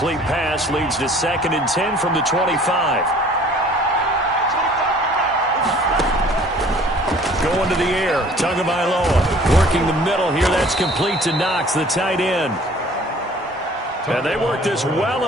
pass leads to 2nd and 10 from the 25. Going to the air, Tagovailoa working the middle here. That's complete to Knox, the tight end. And they work this well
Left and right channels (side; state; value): both; normal; correlation 0.52